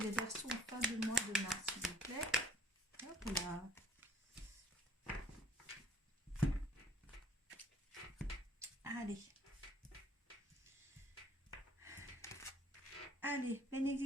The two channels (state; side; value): normal; both; correlation 0.58